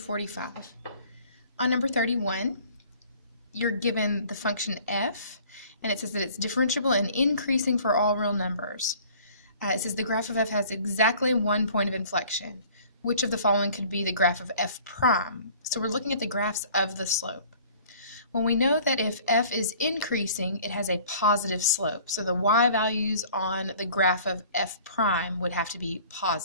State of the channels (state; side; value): inverted; both; correlation -0.51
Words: On number 31, you're given the function f, and it says that it's differentiable and increasing for all real numbers. It says the graph of f has exactly 1 point of inflection. Which of the following could be the graph of f prime? So we're looking at the graphs of the slope. Well, we know that if f is increasing, it has a positive slope. So the y values on the graph of f prime would have to be